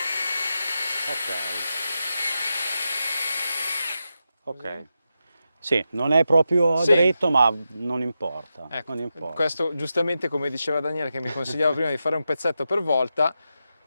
Ok. Sì, non è proprio dritto, ma non importa. Ecco, non importa. Questo giustamente, come diceva Daniele, che mi consigliava prima di fare un pezzetto per volta,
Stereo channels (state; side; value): inverted; both; correlation -0.88